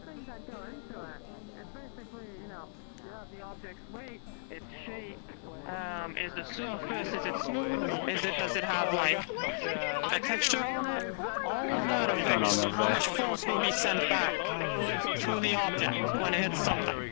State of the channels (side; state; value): right; silent; digital silence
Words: the objects Does it have like a texture on it? Turn on over there. Force will be sent back through the optic when it hits something.